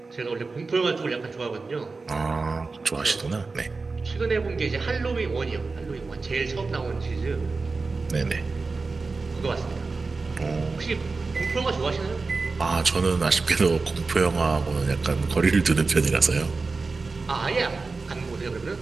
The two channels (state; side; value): quieter; left; 4.0 dB